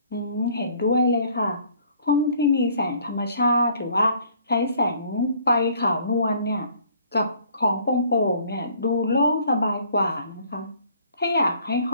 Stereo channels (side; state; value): both; inverted; correlation -0.58